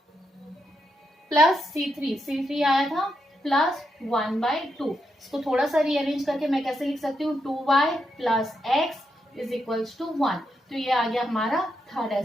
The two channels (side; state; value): both; normal; correlation 0.83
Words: प्लस C3 आया था प्लस 1/2। इसको थोड़ा सा रीअरेंज करके मैं कैसे लिख सकती हूँ 2y plus x is equals to 1। तो ये आ गया हमारा थर्ड